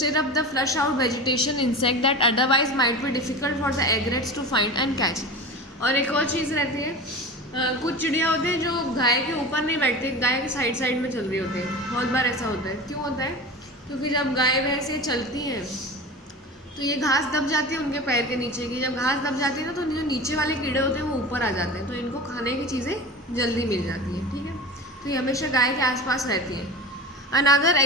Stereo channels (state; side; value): normal; both; correlation 0.31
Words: up the flush out vegetation insect that otherwise might be difficult for the egrets to find and catch. और एक और चीज़ रहती है, कुछ चिड़िया होते हैं जो गाय के ऊपर नहीं बैठते, गाय के साइड साइड में चल रही होती है। बहुत बार ऐसा होता है, क्यों होता है, क्योंकि जब गाय भैंस ये चलती हैं तो ये घास दब जाती है उनके पैर के नीचे की, जब घास दब जाती है ना तो जो नीचे वाले कीड़े होते हैं वो ऊपर आ जाते हैं, तो इनको खाने की चीज़ें जल्दी मिल जाती हैं, ठीक है। तो ये हमेशा गाय के आसपास रहती है। Another